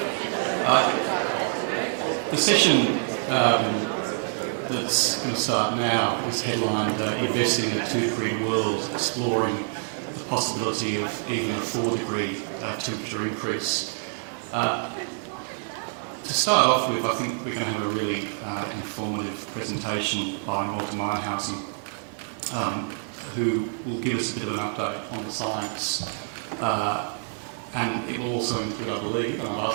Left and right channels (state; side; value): silent; left; 61 dB below the other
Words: The session that's going to start now is headlined Investing in a 2-degree World, Exploring the Possibility of even a 4-degree temperature increase. To start off with, I think we're going to have a really informative presentation by Malte Meinshausen, who will give us a bit of an update on the science. And it will also include, I believe, and I'll